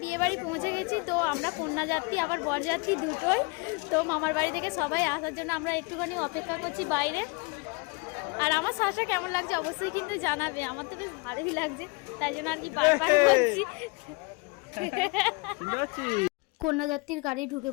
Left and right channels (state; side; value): quieter; right; 29.2 dB